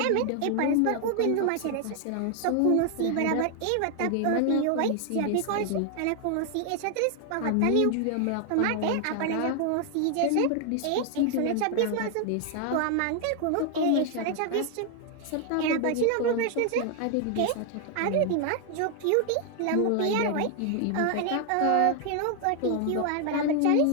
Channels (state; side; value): different; both; correlation 0.00